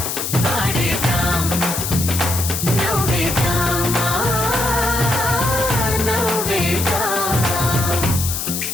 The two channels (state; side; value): noise; left; hiss, 3 dB below the sound